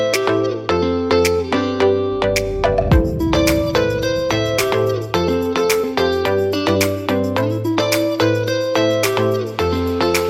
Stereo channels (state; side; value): identical; both; correlation 1.00